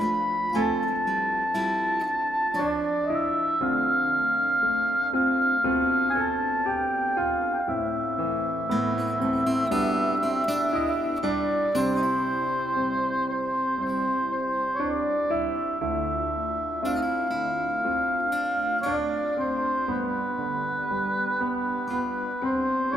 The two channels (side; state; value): left; noise; rumble, 28 dB below the sound